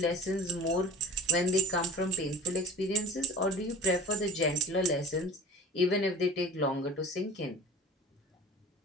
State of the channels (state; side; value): normal; both; correlation 0.41